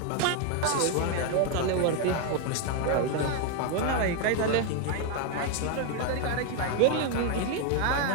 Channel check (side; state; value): both; different; correlation 0.01